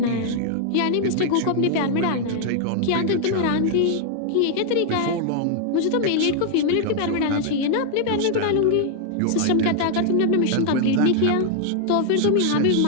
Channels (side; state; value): both; different; correlation 0.00